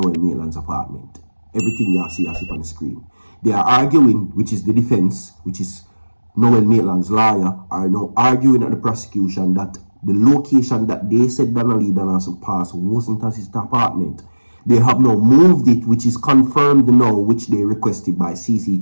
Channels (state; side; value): inverted; both; correlation -1.00